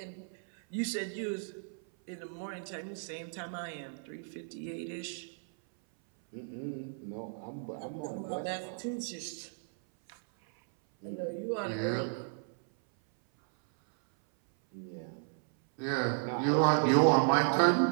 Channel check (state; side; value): silent; left; 55 dB below the other